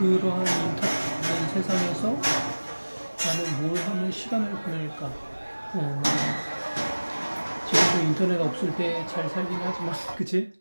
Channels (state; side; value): inverted; both; correlation -1.00